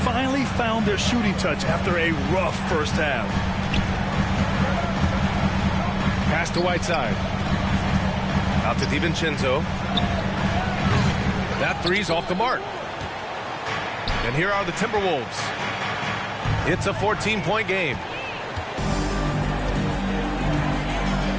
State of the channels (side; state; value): both; identical; correlation 1.00